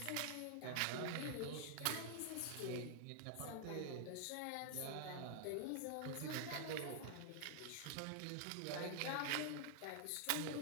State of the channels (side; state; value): both; different; correlation 0.00